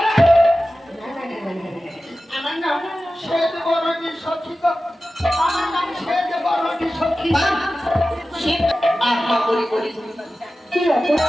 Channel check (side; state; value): both; normal; correlation 0.95